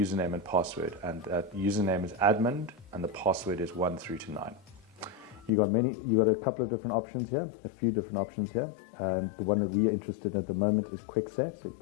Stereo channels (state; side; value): drops out; right; at 5.5 s